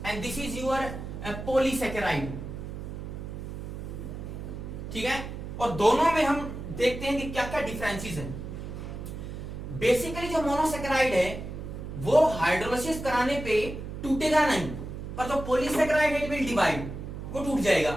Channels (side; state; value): right; noise; hum, 8 dB below the sound